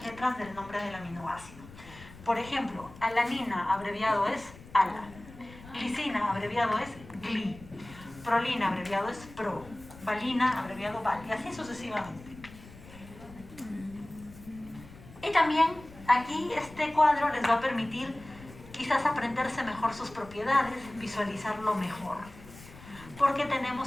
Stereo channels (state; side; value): noise; left; rumble, 19 dB below the sound